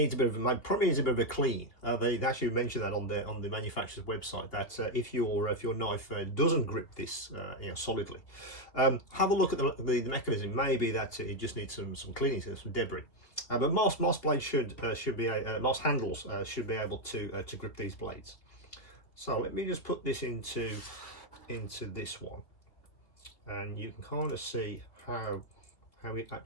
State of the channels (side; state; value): right; late; 2.8 ms